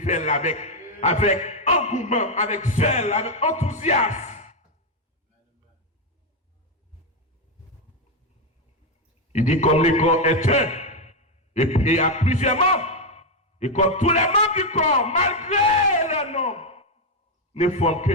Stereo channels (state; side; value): normal; both; correlation 0.04